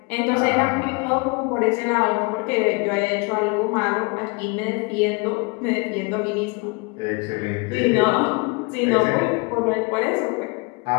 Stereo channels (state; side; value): quieter; right; 29.6 dB